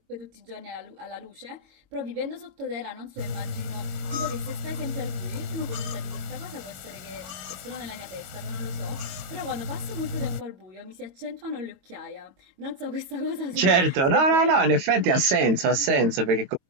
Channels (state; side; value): late; left; 22 ms